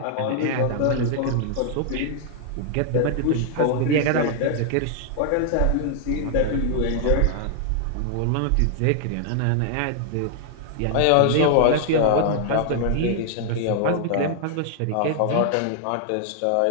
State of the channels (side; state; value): both; different; correlation 0.00